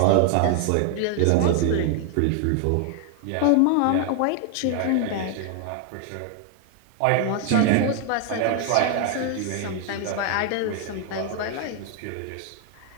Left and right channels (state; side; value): different; both; correlation 0.00